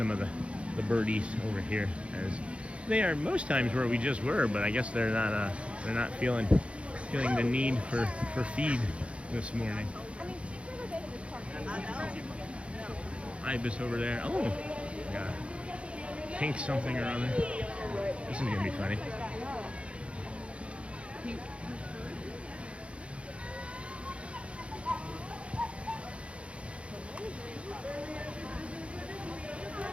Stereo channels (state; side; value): late; left; 0.060 ms